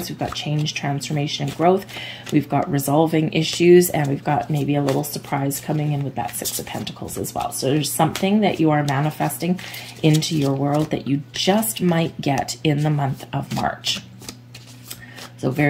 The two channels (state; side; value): identical; both; correlation 1.00